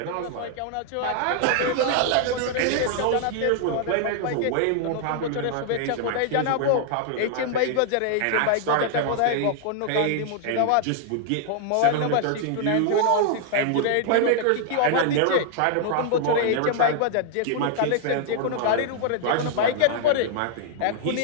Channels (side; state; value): both; different; correlation 0.00